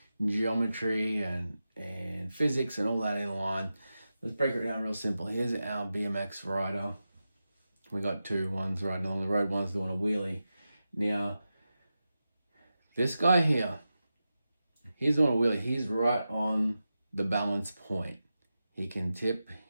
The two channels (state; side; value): inverted; both; correlation -0.92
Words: geometry and physics and all that in line. Let's break it down real simple. Here's our BMX rider. We got two, one's riding along the road, one's doing a wheelie. Now, this guy here, he's doing a wheelie. He's right on the balance point. He can tip,